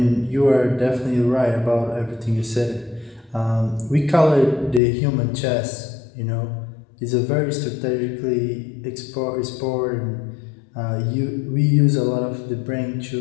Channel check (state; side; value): drops out; right; at 4.8 s